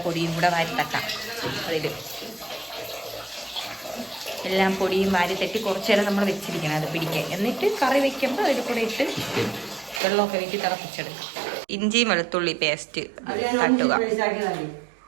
പൊടിയും കൂടെ വാരി തട്ടാം. അതിൽ എല്ലാം പൊടിയും വാരി തട്ടി കുറച്ചു നേരം നമ്മൾ വെച്ചിരിക്കണം അത് പിടിക്കാൻ. എന്നിട്ട് കറി വെക്കുമ്പോൾ അതിൽ കൂടെ ഇട്ട് വെള്ളമൊക്കെ വീട്ടിൽ തിളപ്പിച്ചെടുക്കാം. ഇഞ്ചിയും വെളുത്തുള്ളി പേസ്റ്റ് തട്ടുക.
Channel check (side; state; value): left; drops out; at 10.0 s